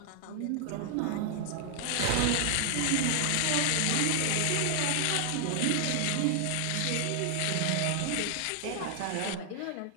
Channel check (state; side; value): different; both; correlation 0.00